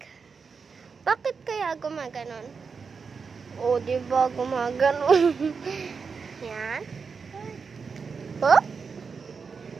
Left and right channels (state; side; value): quieter; left; 5.4 dB